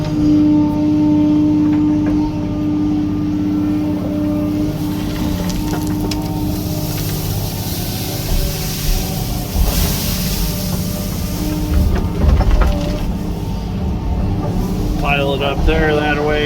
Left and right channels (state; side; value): identical; both; correlation 1.00